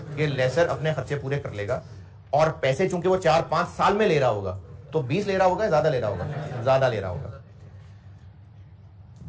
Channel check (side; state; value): both; identical; correlation 1.00